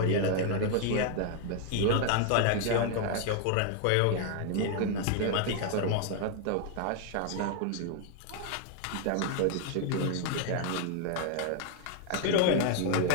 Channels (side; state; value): both; different; correlation 0.00